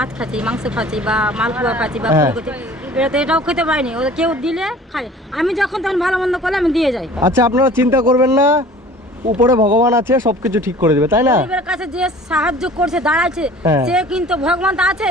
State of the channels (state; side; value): normal; both; correlation 0.46